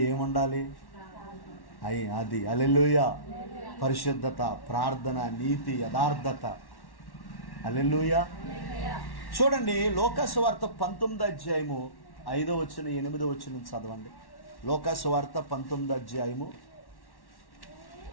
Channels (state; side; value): late; right; 1.1 ms